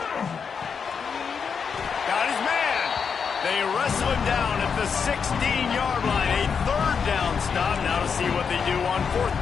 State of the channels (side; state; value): right; quieter; 6.3 dB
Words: Got his man. They wrestle him down at the 16-yard line. A 3rd down stop. Now to see what they do on 4th